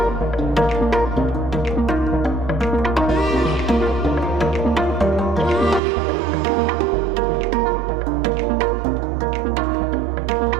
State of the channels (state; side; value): drops out; left; at 5.8 s